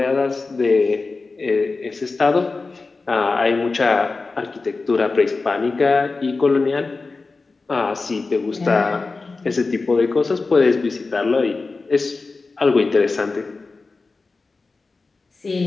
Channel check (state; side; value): quieter; right; 3.9 dB